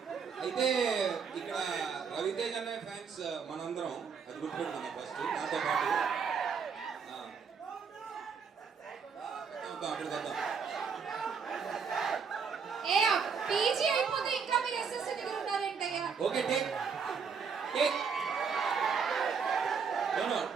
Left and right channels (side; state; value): left; quieter; 6.0 dB